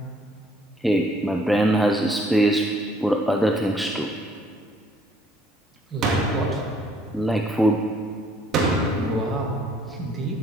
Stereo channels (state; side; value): normal; both; correlation 0.63